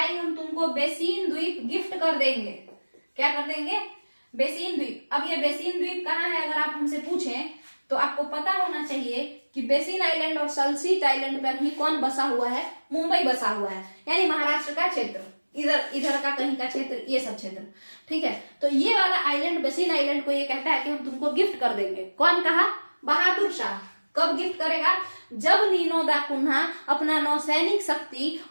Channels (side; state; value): both; inverted; correlation -1.00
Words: हम तुमको बेसिन द्वीप गिफ्ट कर देंगे। क्या कर देंगे? बेसिन द्वीप। अब ये बेसिन द्वीप कहाँ है अगर आप हमसे पूछें तो आपको पता होना चाहिए कि बेसिन आइलैंड और सल्सीट आइलैंड पर ही कौन बसा हुआ है? मुंबई बसा हुआ है, यानी महाराष्ट्र का क्षेत्र, इधर का कहीं का क्षेत्र, ये सब क्षेत्र। ठीक है, तो ये वाला आइलैंड, बेसिन आइलैंड को ये कहता है कि हम तुमको गिफ्ट कर देंगे। कौन कहा? बहादुर शाह। कब गिफ्ट करेगा? जब नीनो दा कुन्हा अपना नौसैनिक शक्ति